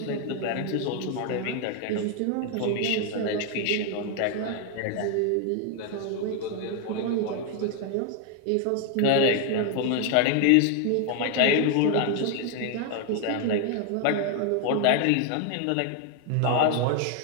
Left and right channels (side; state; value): both; different; correlation 0.01